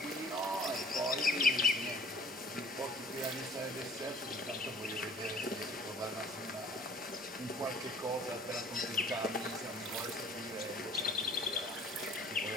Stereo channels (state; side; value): normal; both; correlation 0.51